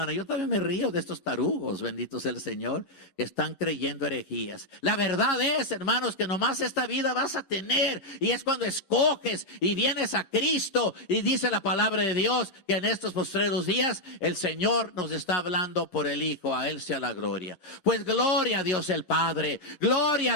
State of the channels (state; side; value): late; right; 10 ms